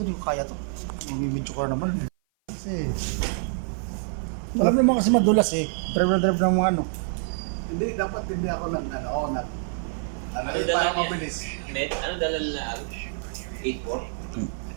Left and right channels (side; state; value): left; silent; 55 dB below the other